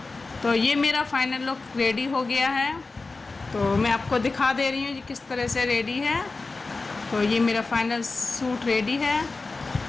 तो ये मेरा फाइनल लुक रेडी हो गया है। तो मैं आपको दिखा दे रही हूँ ये किस तरह से रेडी है। तो ये मेरा फाइनल सूट रेडी है।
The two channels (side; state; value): right; quieter; 3.7 dB